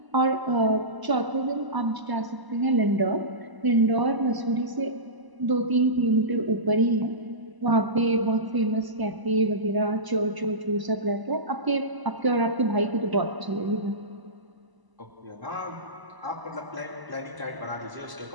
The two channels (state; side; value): late; left; 1.0 ms